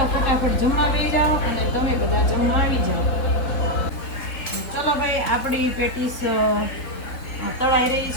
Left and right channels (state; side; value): late; right; 3.9 ms